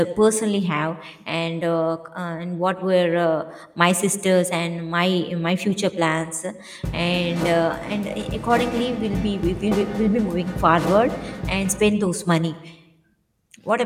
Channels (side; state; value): both; identical; correlation 1.00